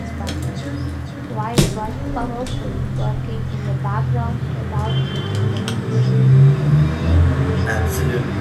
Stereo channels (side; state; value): both; identical; correlation 1.00